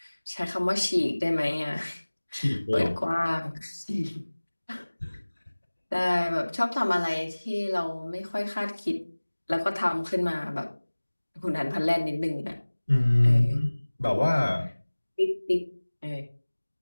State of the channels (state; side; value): inverted; both; correlation -1.00